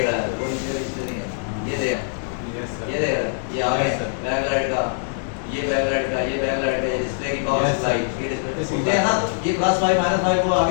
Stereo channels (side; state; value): right; silent; digital silence